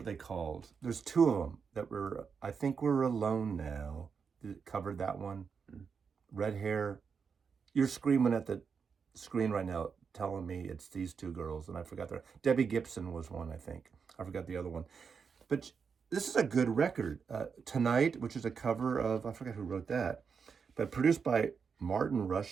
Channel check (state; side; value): quieter; left; 6.0 dB